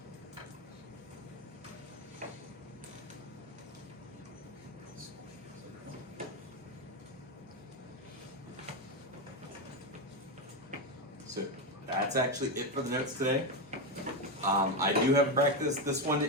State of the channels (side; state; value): both; normal; correlation 0.10